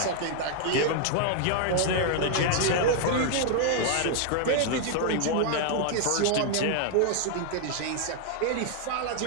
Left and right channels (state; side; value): different; both; correlation 0.00